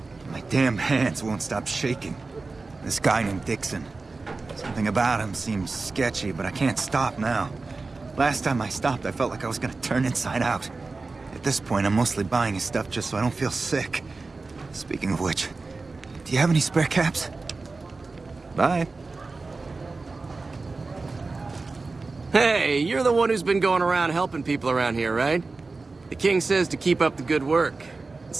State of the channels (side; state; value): left; quieter; 3.8 dB